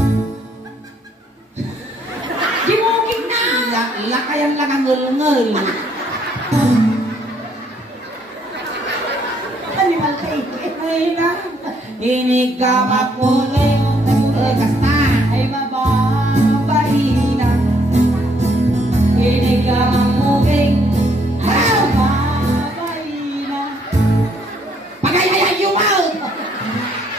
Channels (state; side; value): normal; both; correlation 0.68